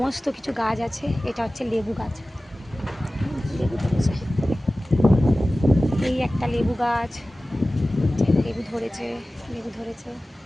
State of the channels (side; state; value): both; normal; correlation 0.97